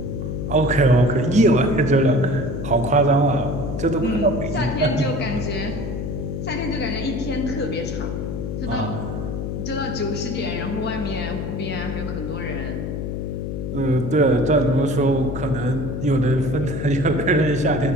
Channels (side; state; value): left; noise; hum, 4 dB below the sound